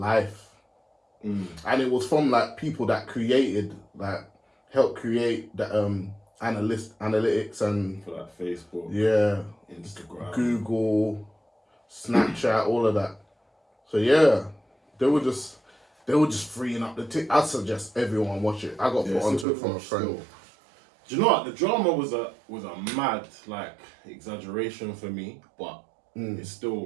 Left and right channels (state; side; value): drops out; left; at 19.5 s